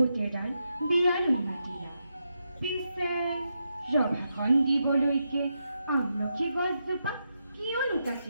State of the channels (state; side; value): inverted; both; correlation -0.85